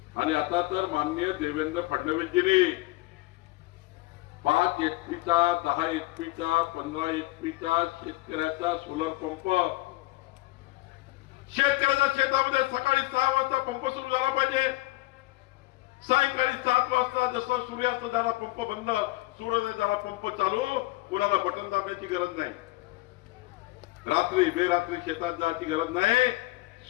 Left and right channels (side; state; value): right; quieter; 20.2 dB